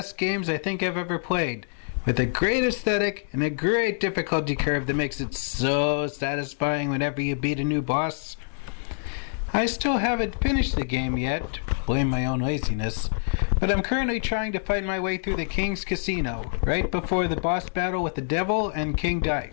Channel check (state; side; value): silent; right; digital silence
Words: games I think I've ever played, with a great aesthetic and a great difficulty curve that makes it so satisfying whenever you beat a new boss. I still haven't finished the game yet, blame my own laziness, but I'm currently trying to fight my way through the King's Casino, right before the boss battle with the Devil and King